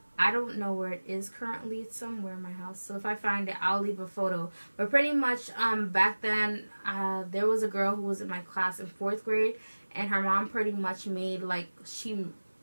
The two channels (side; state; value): both; inverted; correlation -1.00